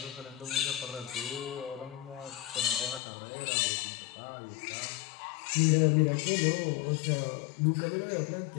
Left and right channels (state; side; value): drops out; right; at 3.0 s